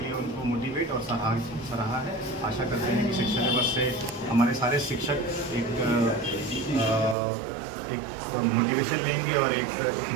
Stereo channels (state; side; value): drops out; left; at 7.2 s